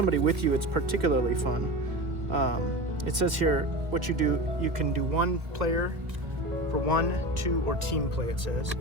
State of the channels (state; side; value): late; left; 1.6 ms